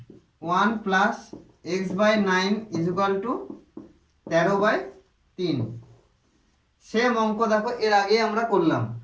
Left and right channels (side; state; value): both; identical; correlation 1.00